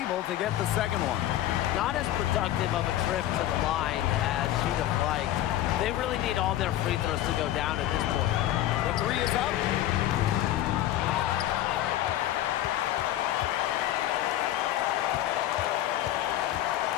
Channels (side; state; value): right; quieter; 13.4 dB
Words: to get the second one. Not as productive of a trip to the line as she'd have liked. They really need all their free throws to go down at this point. The 3 is up.